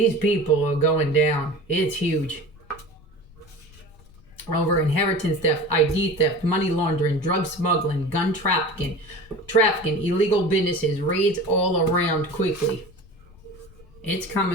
people are going down. It's huge. Over inheritance theft, ID theft, money laundering, drug smuggling, gun trafficking, illegal businesses, raids all around quickly. It's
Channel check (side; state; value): left; noise; rumble, 24 dB below the sound